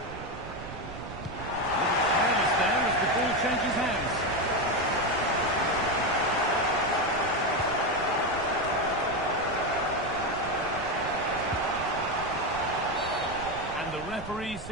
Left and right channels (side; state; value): right; noise; rumble, 13 dB below the sound